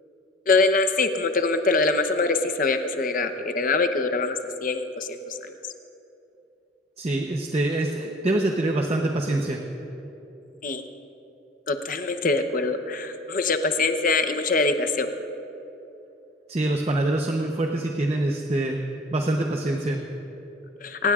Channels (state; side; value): normal; both; correlation 0.43